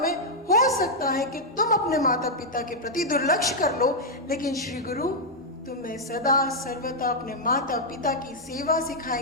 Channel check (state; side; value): normal; both; correlation -0.04